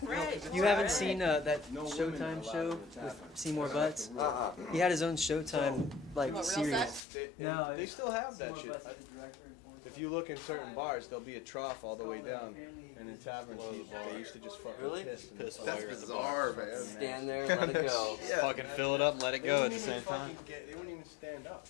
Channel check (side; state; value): right; drops out; at 7.0 s